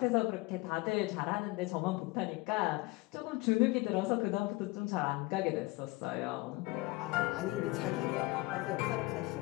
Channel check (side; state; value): right; quieter; 22.3 dB